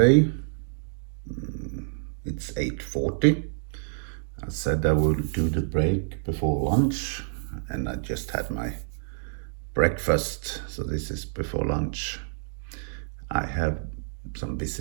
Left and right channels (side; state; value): left; silent; digital silence